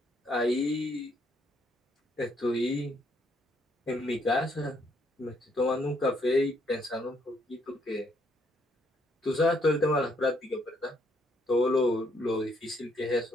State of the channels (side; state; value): both; normal; correlation 0.71